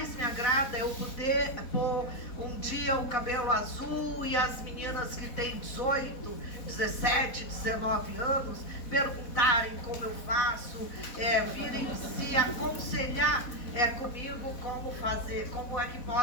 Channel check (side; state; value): right; late; 4.1 ms